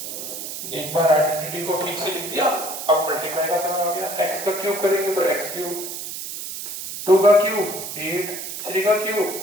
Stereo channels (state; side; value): noise; right; hiss, 7 dB below the sound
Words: एक बार आइडेंटिटी को ठीक से लिख दिया, अब मल्टीप्लाई का समय हो गया, x का क्यूब करेंगे तो x क्यूब, 2 का क्यूब 8, 3 का क्यूब